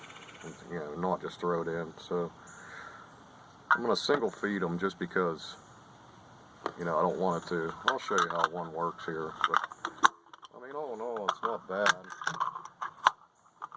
and, not just throw it in? So I'm going to single feed them just because, I don't want it to. I'll show you how one works here. But I mean, all in all, not bad.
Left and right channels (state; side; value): identical; both; correlation 1.00